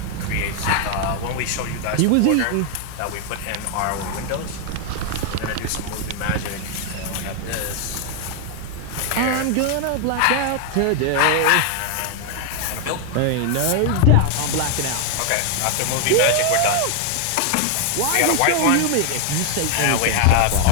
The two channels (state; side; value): different; both; correlation 0.00